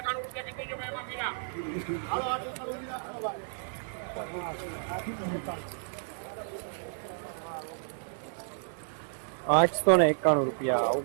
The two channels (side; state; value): left; silent; 57 dB below the other